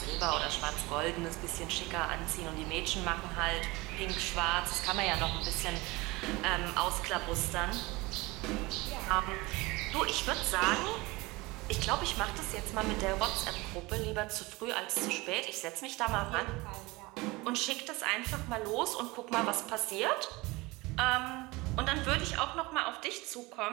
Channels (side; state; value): left; quieter; 22.8 dB